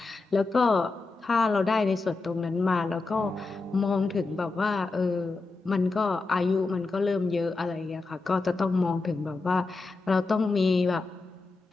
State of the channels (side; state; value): right; quieter; 3.7 dB